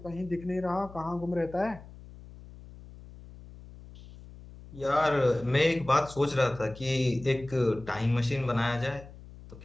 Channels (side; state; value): left; noise; hum, 18 dB below the sound